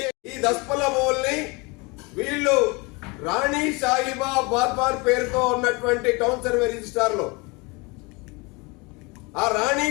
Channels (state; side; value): quieter; right; 27.4 dB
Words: ఈ దస్పల్ల భూముల్ని వీళ్ళు రాణి సాయిబా బాద్వాన్ పేరుతో ఉన్నటువంటి టౌన్ సర్వే రిజిస్టార్ లో ఆ రాణి